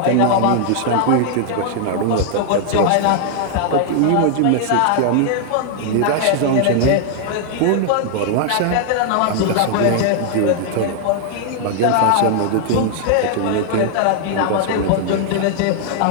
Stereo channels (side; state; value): both; different; correlation -0.01